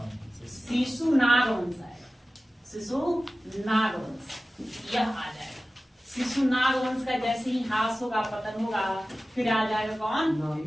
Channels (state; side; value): normal; both; correlation 0.96